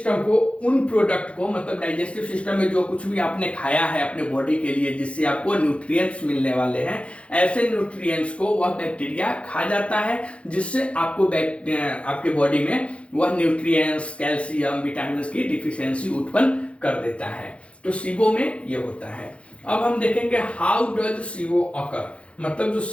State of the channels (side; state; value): right; late; 0.061 ms